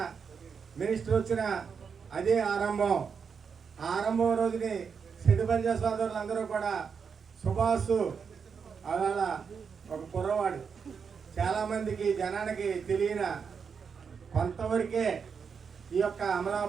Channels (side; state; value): left; quieter; 6.2 dB